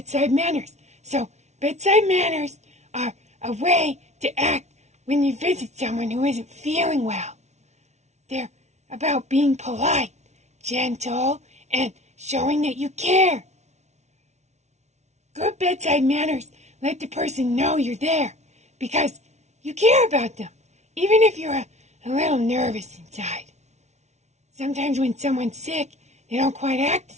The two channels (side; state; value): left; late; 0.32 ms